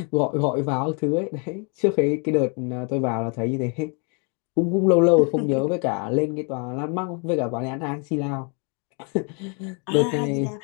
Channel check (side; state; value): right; quieter; 36.6 dB